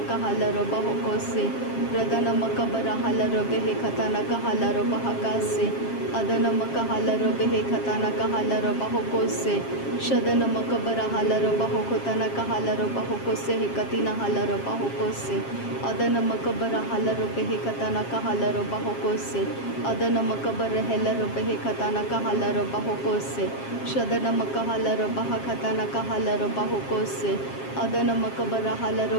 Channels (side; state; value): right; late; 7.4 ms